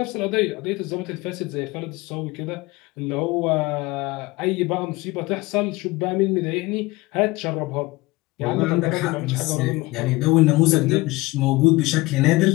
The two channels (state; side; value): quieter; right; 21.2 dB